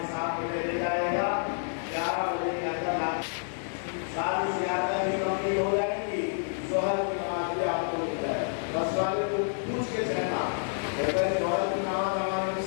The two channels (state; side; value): silent; right; digital silence